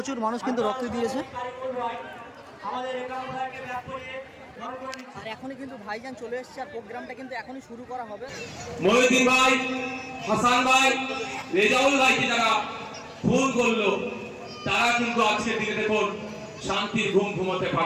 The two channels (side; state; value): both; identical; correlation 1.00